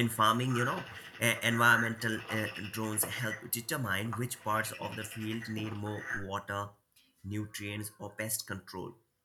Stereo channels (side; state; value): both; identical; correlation 1.00